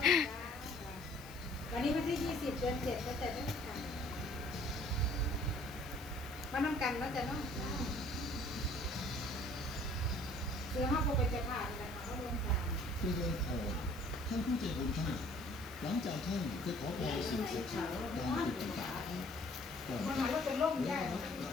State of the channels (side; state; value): left; noise; hiss, 19 dB below the sound